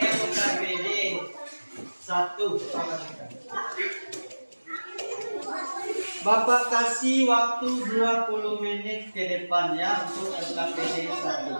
1. Bapak kasih waktu 20 menit ke depan ya untuk LKPD 1.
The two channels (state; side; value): inverted; both; correlation -1.00